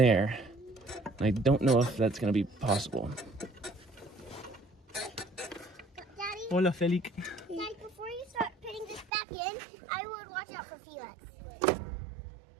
And I don't know if that's going to be possible. Daddy, Hola, Felix. Daddy, before you start putting this back in, I would watch out for Felix.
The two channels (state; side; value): drops out; left; at 9.1 s